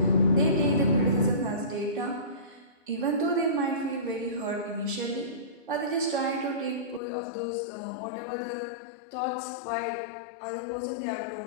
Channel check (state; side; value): drops out; right; at 7.0 s